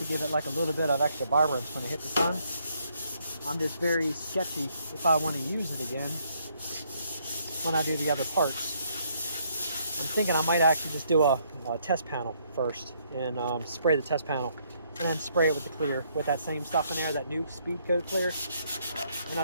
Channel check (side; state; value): both; inverted; correlation -0.70